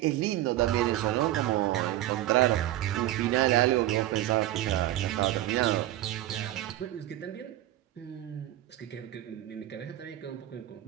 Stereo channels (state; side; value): quieter; left; 14.5 dB